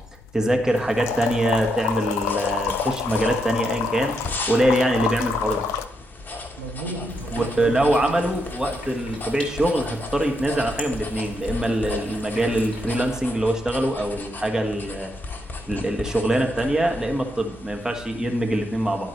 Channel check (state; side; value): normal; both; correlation 0.80